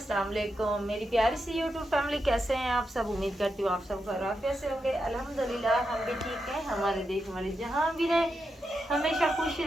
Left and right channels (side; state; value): both; normal; correlation 0.86